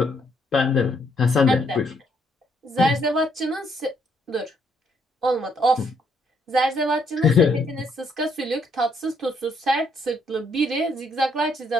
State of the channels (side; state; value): both; normal; correlation 0.71